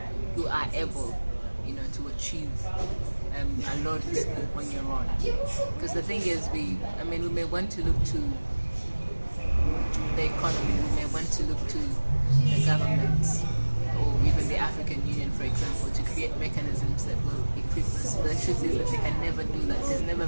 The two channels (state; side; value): inverted; both; correlation -1.00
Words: you are able, to achieve a lot on your own. Because the thing is, we may want to look to the economy, we may want to look to the government, or even the African Union, for example, to create mechanisms that will equip us. The truth is that they can never do that. There's never